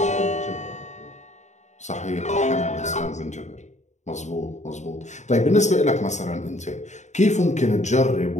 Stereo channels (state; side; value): late; right; 0.34 ms